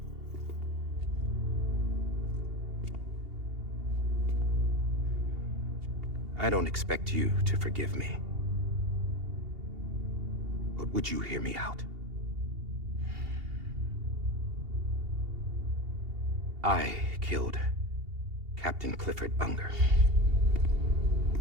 I don't expect you to forgive me. But would you hear me out? I killed Captain Clifford Unger.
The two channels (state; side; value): late; left; 2.8 ms